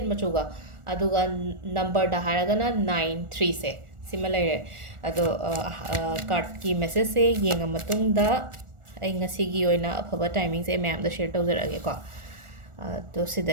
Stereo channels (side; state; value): left; late; 1.4 ms